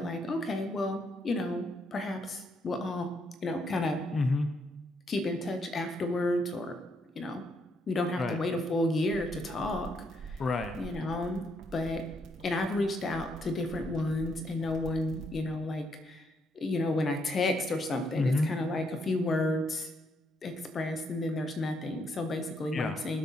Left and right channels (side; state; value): both; normal; correlation 0.75